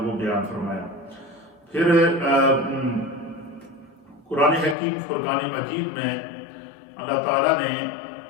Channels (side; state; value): right; drops out; at 4.8 s